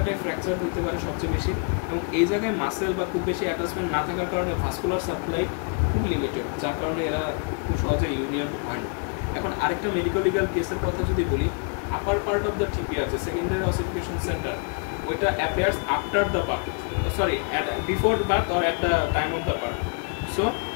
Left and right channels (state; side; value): quieter; right; 39.2 dB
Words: ফ্র্যাকচার হইতে পারে সবচেয়ে বেশি। এবং এই জায়গায় মাসেল বা খুব বেশি অ্যাটাচমেন্ট না থাকার কারণে ভাস্কুলার সাপ্লাই খুব লিমিটেড, যার কারণে এরা খুব সহজে ইউনিয়ন হয় না। এখন আরেকটা মেডিকেল লিগাল কেসের কথা যদি বলি, আপার পার্ট অফ দ্য টিবিয়া যে সেকেন্ডারি অসিফিকেশন সেন্টার, ওইটা appears after the birth, sorry before birth or at the time of the birth. So